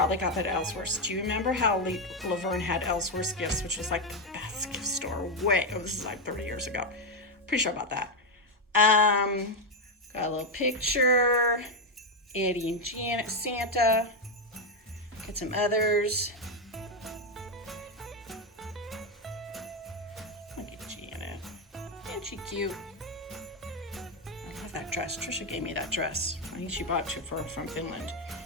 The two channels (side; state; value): both; normal; correlation 0.06